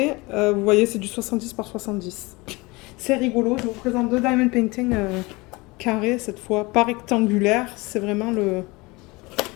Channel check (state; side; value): quieter; right; 24.1 dB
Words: Vous voyez, c'est du 70 par 70. C'est rigolo. Je vous présente 2 diamond painting carrés cette fois, pas rectangulaire. C'est vraiment le